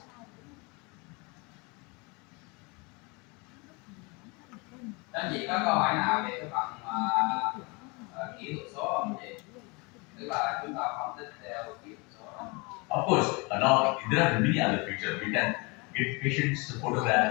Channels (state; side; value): quieter; right; 28.5 dB